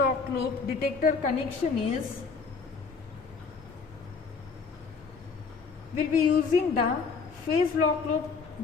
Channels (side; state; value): right; quieter; 5.0 dB